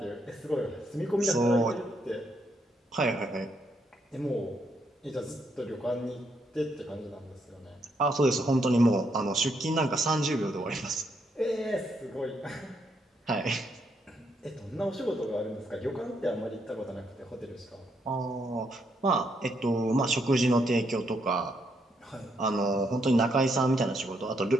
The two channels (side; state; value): both; normal; correlation 0.76